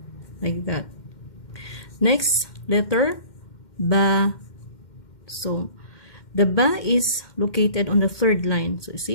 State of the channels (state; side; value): late; right; 2.1 ms